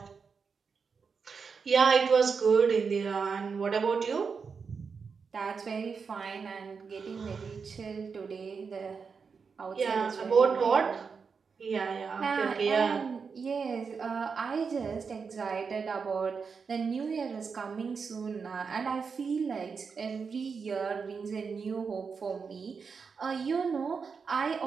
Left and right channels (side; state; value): left; quieter; 5.5 dB